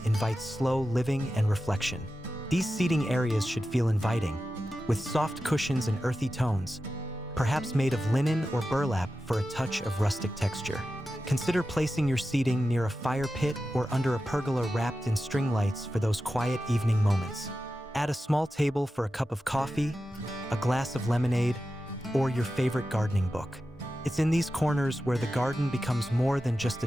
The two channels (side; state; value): both; normal; correlation 0.92